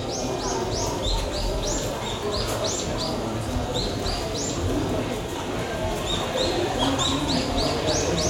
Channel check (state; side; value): identical; both; correlation 1.00